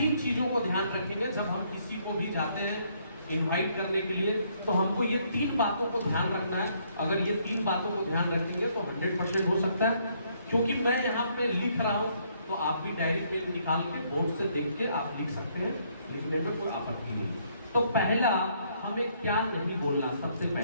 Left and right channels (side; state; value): both; inverted; correlation -0.69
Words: चीजों को ध्यान रखेंगे जब हम किसी को भी जाते हैं इनवाइट करने के लिए। तो हमको ये 3 बातों को ध्यान रखना है। अगर ये 3 बातों को ध्यान रखेंगे तो 100% हो सकता है। क्योंकि मैं यहाँ पे लिख रहा हूँ तो आप भी डायरी पेन निकाल के बोर्ड से देख के आप लिख सकते हैं, लिखने में कोई आपत्ति नहीं। तो पहला हमें क्या नहीं बोलना, सबसे